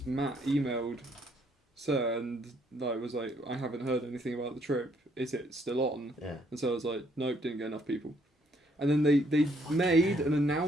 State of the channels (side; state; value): both; normal; correlation 0.68